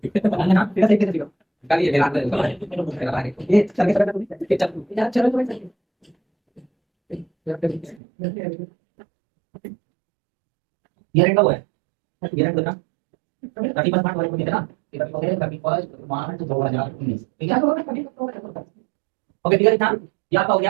ना तेरा सही कैसे कल ये मेरा मेरा आगे ये चल के चल यार चलो ये रेंट का हुआ है ये रेंट ना 30% वाले को देना इधर को है कभी फर्स्ट मार्च 2019 ठीक है ओके ठीक है ना ये आपका हो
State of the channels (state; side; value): drops out; left; at 8.0 s